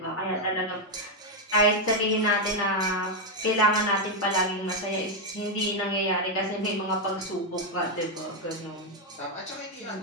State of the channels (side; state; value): both; normal; correlation 0.02